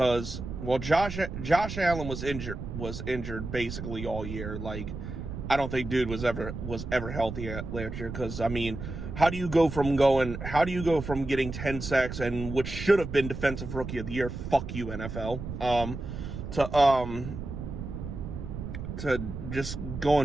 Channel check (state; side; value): noise; right; rumble, 7 dB below the sound